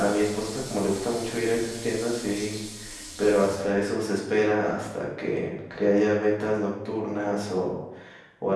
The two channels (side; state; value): both; identical; correlation 1.00